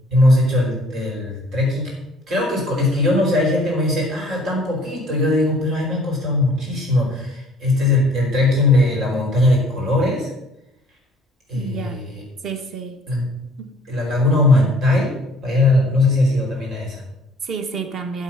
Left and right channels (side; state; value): both; normal; correlation 0.57